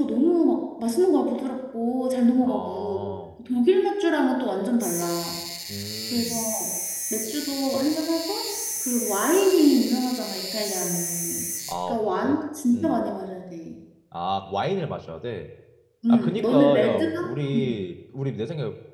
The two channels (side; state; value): both; identical; correlation 1.00